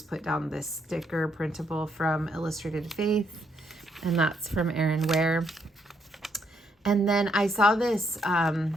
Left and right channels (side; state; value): both; normal; correlation 0.74